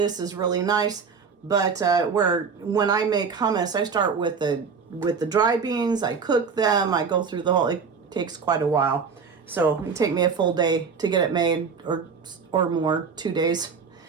is really nice. But when I make hummus, I start with the dry beans. I cook them. I go through the whole. It takes quite a while, so it take me a full day to get it made, or more, 2 days.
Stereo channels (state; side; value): quieter; left; 5.7 dB